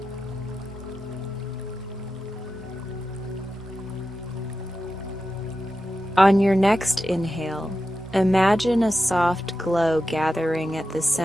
On your next inhale, imagine a soft glow gathering at the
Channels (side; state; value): both; normal; correlation 0.91